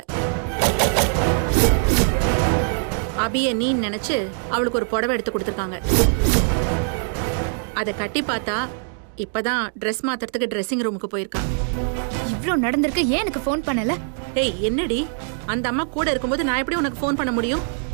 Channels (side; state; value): left; silent; digital silence